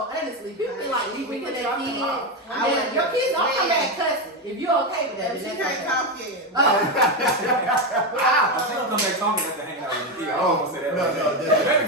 Honestly, people be like, "Leave me with that kid." Your kids don't come back cussing. If you're okay with that, She can't come in. Wow. come back talking after hanging out with Nikia. I Oh, don't want to say that. no, right no, now. definitely. Baby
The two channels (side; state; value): both; normal; correlation 0.11